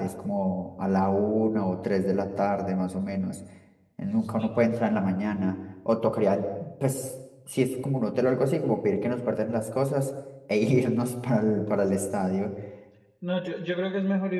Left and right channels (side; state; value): both; identical; correlation 1.00